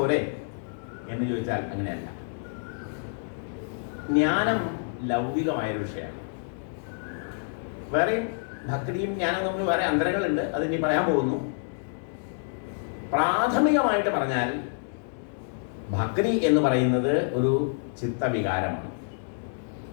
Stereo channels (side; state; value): right; silent; digital silence